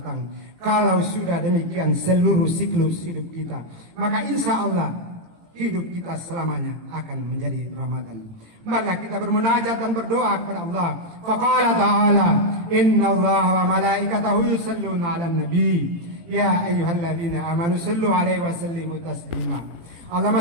Kalau sudah demikian seluruh siklus hidup kita, maka insya Allah hidup kita selamanya akan menjadi Ramadan. Marilah kita bermunajat dan berdoa kepada Allah. Faqala ta'ala, "Inna Allah wa malaikatahu yusalluna 'alan nabi, ya ayyuhalladzina amanu sallu 'alaihi wa sallimu taslima. Allahumma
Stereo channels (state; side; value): late; left; 18 ms